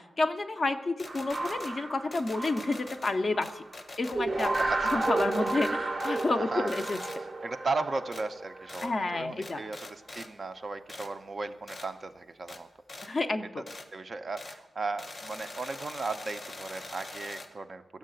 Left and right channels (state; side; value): normal; both; correlation 0.91